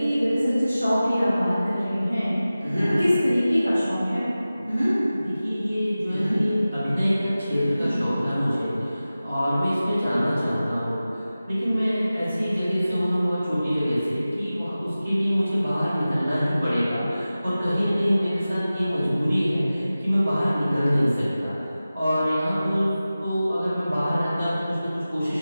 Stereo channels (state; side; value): inverted; both; correlation -0.96